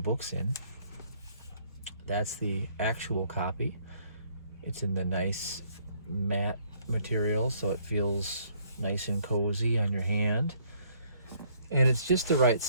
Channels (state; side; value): inverted; both; correlation -0.64